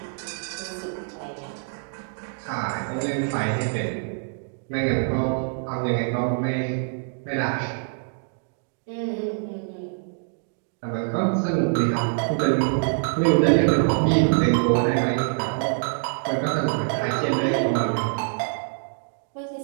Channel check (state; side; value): silent; left; digital silence